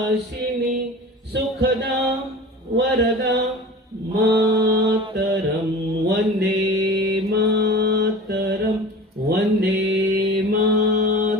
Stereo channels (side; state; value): both; normal; correlation 0.37